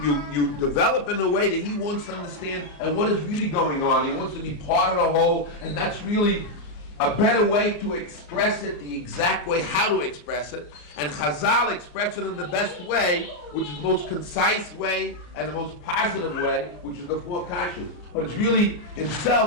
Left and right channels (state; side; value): late; right; 34 ms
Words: develop in a way that he wants to understand and what is really going on. He wants to be part of the whole, and that's really a better way to express it, the exact way how to express it. And Chazal express it in the best way, which is the most concise way and the most positive way, which is the four kashas. But it's really